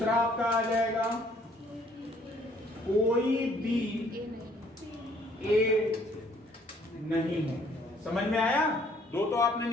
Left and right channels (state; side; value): normal; both; correlation 0.62